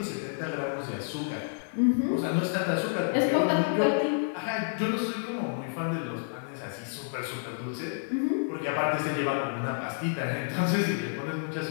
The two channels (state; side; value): silent; right; 58 dB below the other